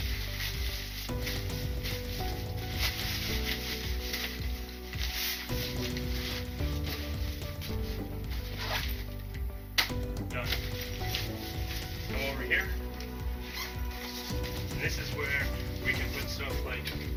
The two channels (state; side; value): identical; both; correlation 1.00